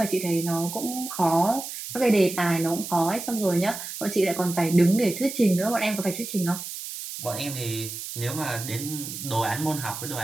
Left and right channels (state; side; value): noise; right; hiss, 8 dB below the sound